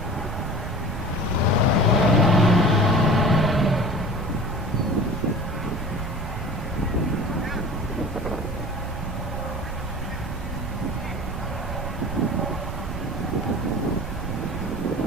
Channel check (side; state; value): right; noise; rumble, 5 dB below the sound